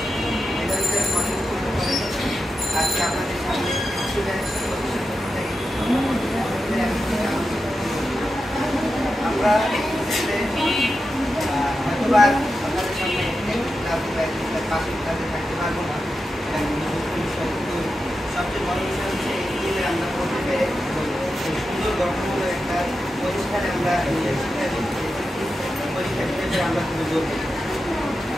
এটা হচ্ছে মানুষ মনে করে আজকে আপনাদের সামনে স্টুডেন্ট আমরা হয়তোবার আপনাদের সামনে পাঁচ মিনিট থাকতে পারবো না। কিন্তু সবচেয়ে বড় বিষয় হচ্ছে এই দিনে আমরা বলতে পেরে সুন্দর গঠনমূলক একটা প্রতিষ্ঠানে আমরা পরীক্ষা দিতে পেরে আমরা খুবই গর্বিত।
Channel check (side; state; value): both; normal; correlation 0.89